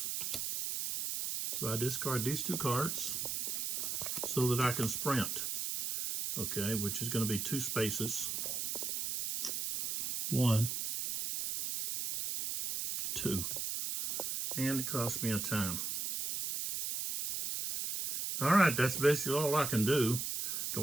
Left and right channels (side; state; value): right; noise; hiss, 2 dB below the sound